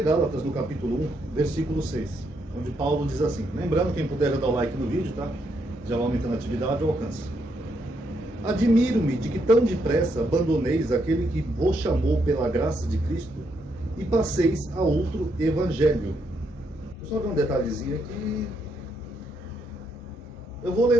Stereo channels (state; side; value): normal; both; correlation 0.77